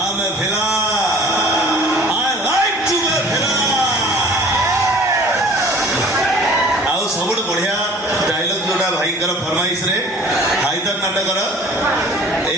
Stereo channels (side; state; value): both; normal; correlation 0.48